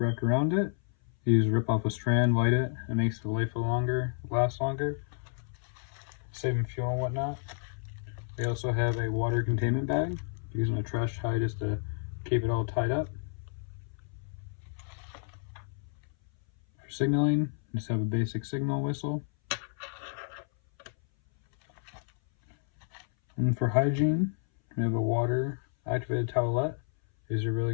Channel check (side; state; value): right; silent; 57 dB below the other